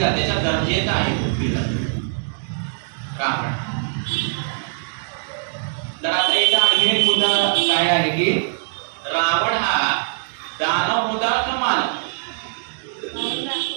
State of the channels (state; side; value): silent; left; digital silence